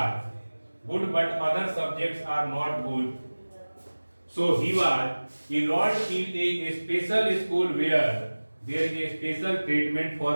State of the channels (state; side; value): inverted; both; correlation -1.00